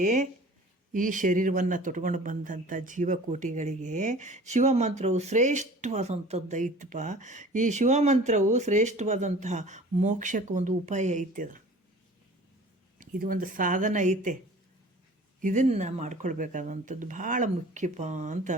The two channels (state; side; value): normal; both; correlation 0.45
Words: ಈ ಶರೀರವನ್ನು ತೊಟ್ಕೊಂಡು ಬಂದಂಥ ಜೀವಕೋಟಿಗಳಿಗೆ ಶಿವಮಂತ್ರವು ಶ್ರೇಷ್ಠವಾದಂಥದ್ದು ಐತಪ್ಪ. ಈ ಶಿವಮಂತ್ರವು ಶ್ರೇಷ್ಠವಾದಂತಹ ಮೋಕ್ಷಕ್ಕೆ ಒಂದು ಉಪಾಯ ಐತೆ. ಇದು ಒಂದು ಸಾಧನ ಐತೆ. ಇದನ್ನು ಮಾಡ್ಕೊಳ್ಬೇಕಾದಂಥದ್ದು ಭಾಳ ಮುಖ್ಯಪ್ಪ ಅಂತ